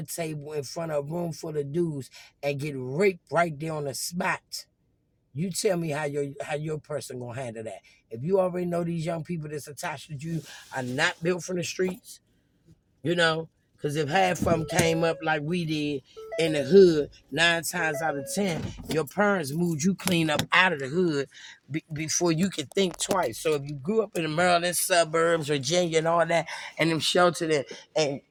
table in front of a room full of dudes and get raped right there on the spot, you tell me how your person gonna handle that. If you already know these young people that's attached to you are not built from the streets, you know, because if half of them came up like we did in the hood, 9 times out of 10, your parents moved you clean up out of the hood before you could think twice. So if you grew up in the Maryland suburbs, Virginia, and all that, and them sheltered and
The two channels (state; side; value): identical; both; correlation 1.00